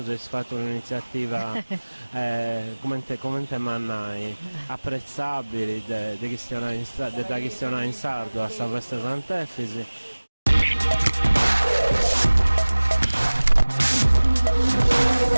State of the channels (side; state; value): both; inverted; correlation -1.00